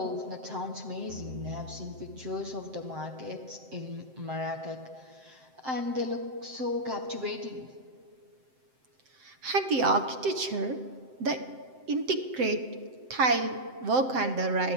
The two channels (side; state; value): left; late; 7.7 ms